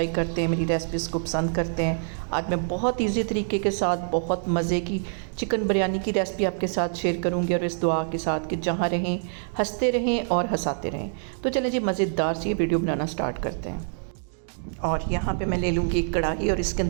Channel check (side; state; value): left; silent; digital silence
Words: करते हैं, मेरी रेसिपीज़ को पसंद करते हैं। आज मैं बहुत ईजी तरीके के साथ बहुत मज़े की चिकन बिरयानी की रेसिपी आपके साथ शेयर करूँगी, और इस दुआ के साथ कि जहाँ रहें हंसते रहें और हंसाते रहें। तो चलें जी, मज़ेदार सी ये वीडियो बनाना स्टार्ट करते हैं। और यहाँ पे मैं ले लूँगी एक कढ़ाई और इसके